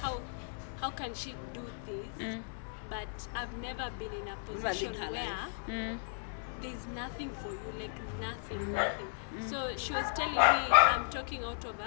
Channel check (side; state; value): right; silent; 54 dB below the other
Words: how can she do this? But I've never been in a position her where life. there's nothing for you, like nothing. So she was telling me I'm talking out of